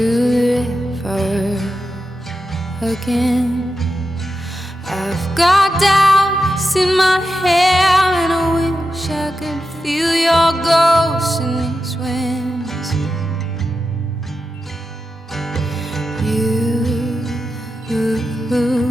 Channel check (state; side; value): normal; both; correlation 0.89